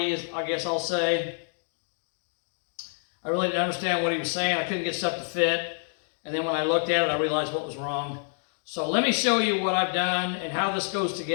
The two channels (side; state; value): right; silent; 60 dB below the other